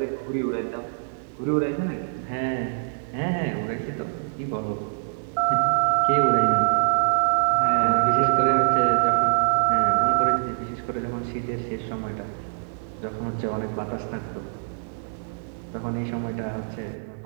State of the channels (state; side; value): silent; left; digital silence